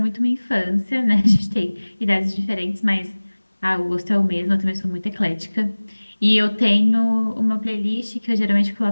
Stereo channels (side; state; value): both; inverted; correlation -1.00